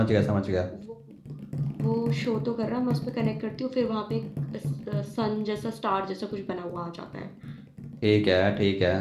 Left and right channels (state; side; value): identical; both; correlation 1.00